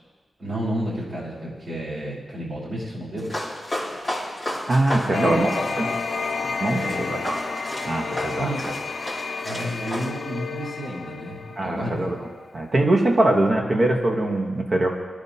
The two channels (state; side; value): normal; both; correlation 0.90